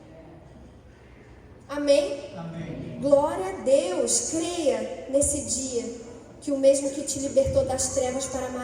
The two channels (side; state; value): both; identical; correlation 1.00